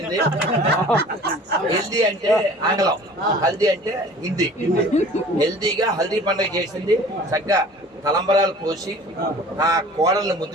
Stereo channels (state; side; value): normal; both; correlation 0.46